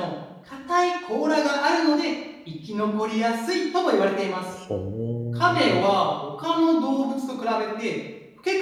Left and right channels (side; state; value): both; identical; correlation 1.00